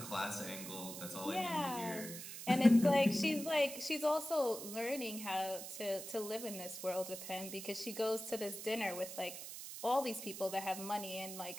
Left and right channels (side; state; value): right; noise; hiss, 9 dB below the sound